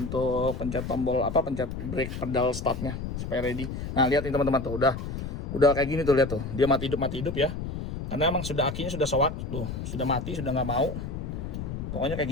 pencet tombol pencet brake pedal startnya supaya ready. Nah lihat nih teman-teman tuh udah kayak gini tuh, lihat tuh dia mati hidup ya. Karena emang sudah akinya sudah soak tuh, sudah mati, sudah nggak mau. Pokoknya kayak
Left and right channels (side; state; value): left; noise; rumble, 6 dB below the sound